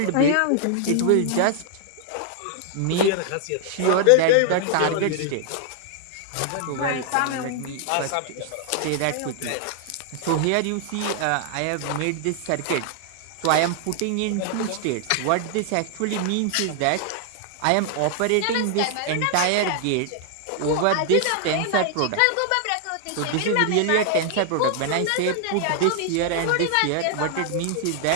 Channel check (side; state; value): both; different; correlation 0.00